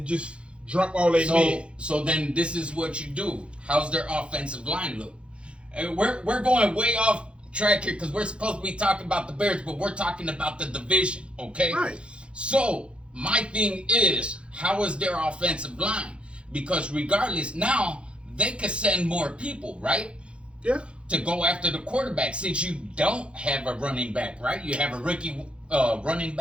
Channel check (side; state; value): left; late; 0.058 ms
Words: just drop all they men. So then this is what you do. How's their offensive line look? We're going way off track here because we're supposed to be talking about the Bears, but we're talking about the division, okay? Right. So my thing is, how is their offensive line? Because regardless, now they could send more people, right? Yeah. To go after the quarterback, since you don't have a running back, right? You have a rookie running